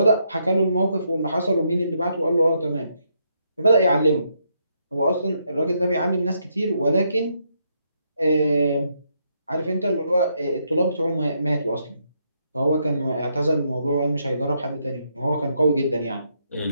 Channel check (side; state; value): both; inverted; correlation -0.77